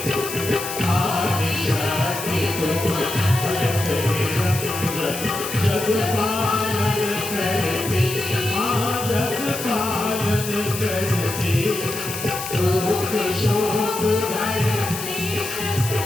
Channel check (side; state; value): left; noise; hiss, 7 dB below the sound